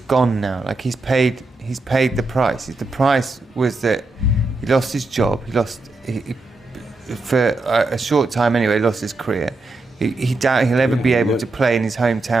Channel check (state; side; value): quieter; left; 3.2 dB